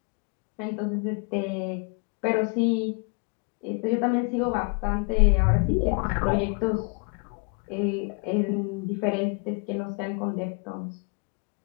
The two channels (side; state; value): right; quieter; 37.4 dB